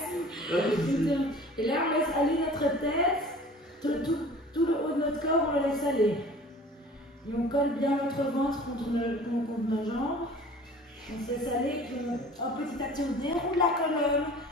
Et là, on laisse aller notre tête, tout le haut de notre corps, on le laisse aller. Et on colle bien notre ventre contre nos jambes. On se laisse aller, puis en petit à petit, on déroule la colonne,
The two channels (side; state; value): both; normal; correlation 0.45